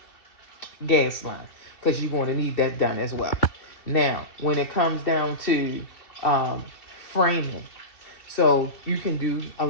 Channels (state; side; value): late; right; 2.7 ms